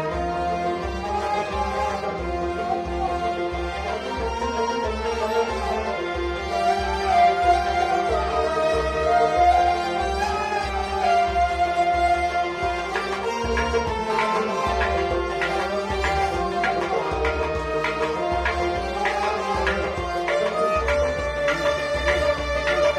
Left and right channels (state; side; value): identical; both; correlation 1.00